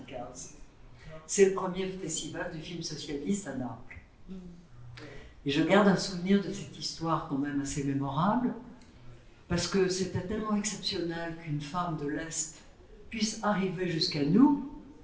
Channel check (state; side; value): identical; both; correlation 1.00